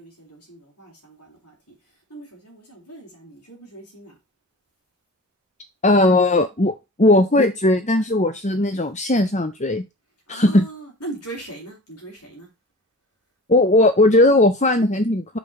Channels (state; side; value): normal; both; correlation 0.38